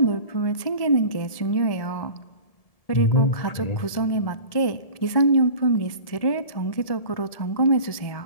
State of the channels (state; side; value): late; right; 1.7 ms